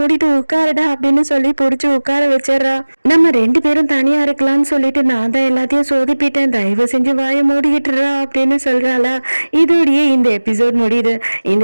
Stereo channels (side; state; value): both; inverted; correlation -1.00